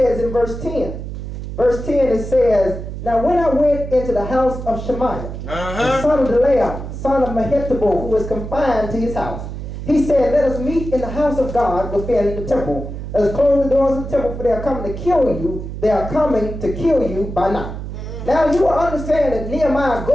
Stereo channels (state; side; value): noise; right; hum, 8 dB below the sound